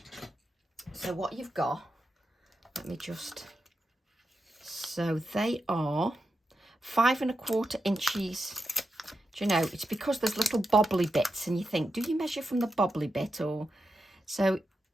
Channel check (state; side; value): normal; both; correlation 0.88